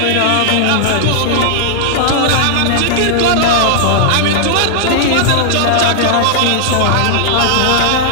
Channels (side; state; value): both; different; correlation -0.01